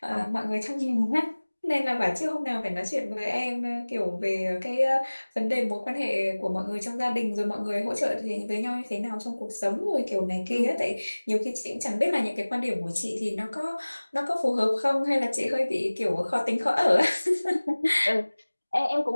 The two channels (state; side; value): inverted; both; correlation -1.00